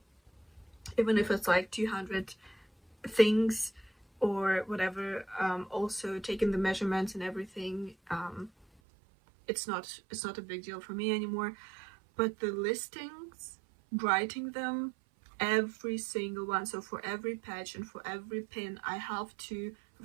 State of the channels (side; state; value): left; drops out; at 8.7 s